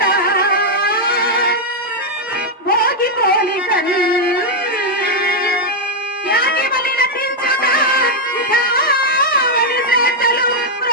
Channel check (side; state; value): both; normal; correlation -0.01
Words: భోగి పోలికన్ యాగి బలి నటించుట ఇఠావని చేతలు